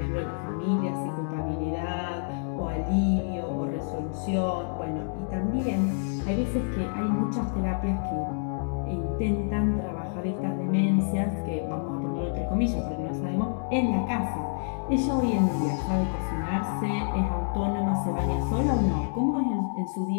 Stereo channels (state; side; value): silent; right; digital silence